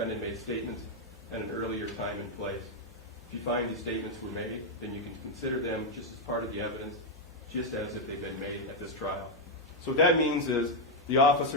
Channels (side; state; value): both; normal; correlation 0.01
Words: made statements at an earlier time and place. If you find these statements were made, then you can consider them just as part of the evidence, just as if they've been made at this trial. So what that means is the